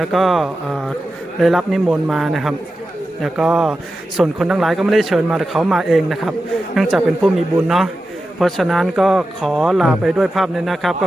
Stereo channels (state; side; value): normal; both; correlation 0.92